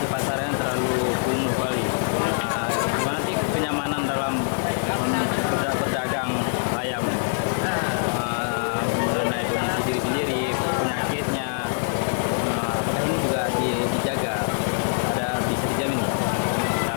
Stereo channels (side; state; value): right; silent; digital silence